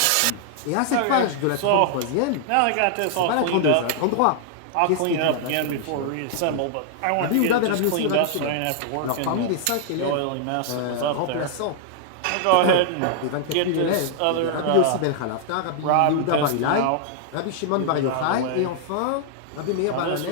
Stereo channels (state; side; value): different; both; correlation -0.01